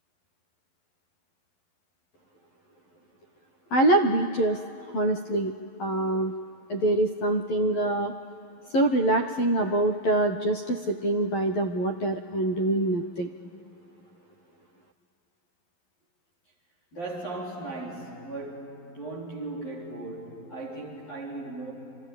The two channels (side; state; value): right; late; 11 ms